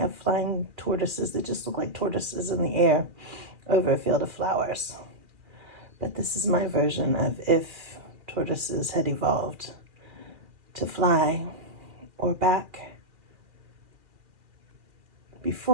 of flying tortoises that just look like tortoises in the air over a field of flowers. But this is my version of if tortoises had evolved to fly or back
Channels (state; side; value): late; left; 2.4 ms